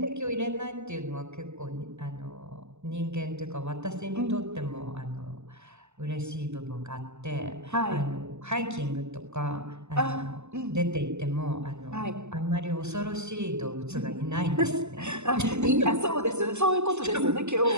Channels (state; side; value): late; left; 0.82 ms